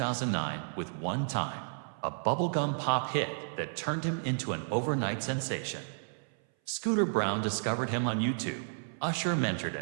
with One Time, a bubblegum pop hit that turned him into an overnight sensation. Scooter Brown discovered him on YouTube, Usher mentored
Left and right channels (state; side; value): silent; left; 56 dB below the other